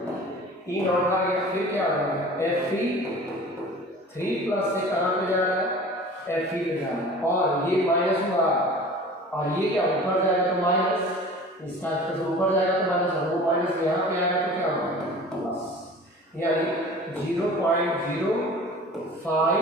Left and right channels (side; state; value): both; normal; correlation 0.42